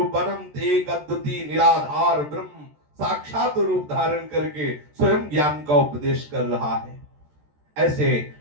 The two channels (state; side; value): late; left; 14 ms